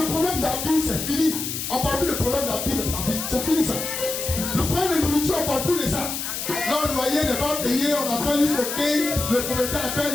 problème de la vie, c'est fini. On ne parle plus de problème de la vie de ta vie. C'est fini ça. Le problème de nourriture, on ne parle plus de ça. Là, le loyer n'est pas payé, on attend jusqu'au quai, le propriétaire appelle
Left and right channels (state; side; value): noise; left; hiss, 4 dB below the sound